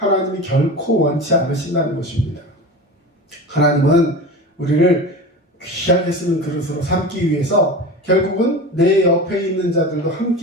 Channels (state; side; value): normal; both; correlation 0.30